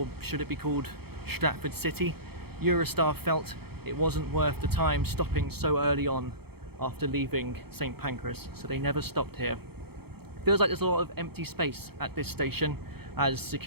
should it be called Stratford City? Eurostar felt it wasn't worth the time stopping so early on after leaving St Pancras, so they never stopped here. Feels like there's a lot of empty space at this station as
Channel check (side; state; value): left; late; 0.96 ms